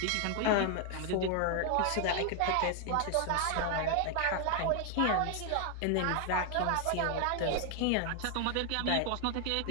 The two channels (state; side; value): different; both; correlation 0.00